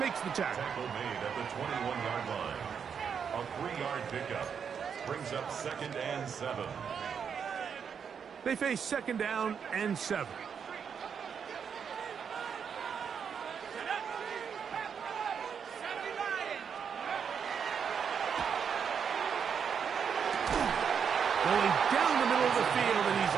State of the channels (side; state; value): left; quieter; 7.0 dB